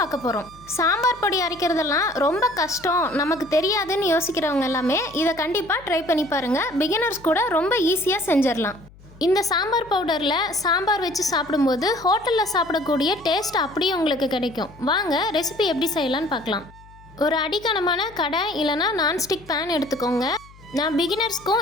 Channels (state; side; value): noise; left; hum, 23 dB below the sound